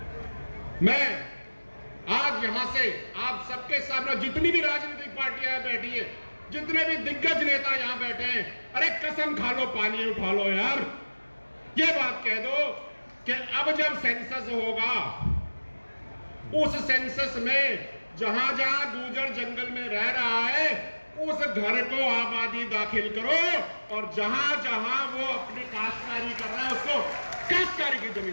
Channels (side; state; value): both; inverted; correlation -1.00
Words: मैं आज यहां से आप सबके सामने, जितनी भी राजनीतिक पार्टियां बैठी है, जितने भी दिग्गज नेता यहां बैठे हैं, अरे कसम खा लो, पानी उठा लो यार। ये बात कह दो कि अब जब सेंसस होगा, उस सेंसस में जहां जहां गुर्जर जंगल में रह रहा है, उस घर को आबादी दाखिल करो, और जहां जहां वो अपनी काश्तकारी कर रहा है उसको काश्तकारी की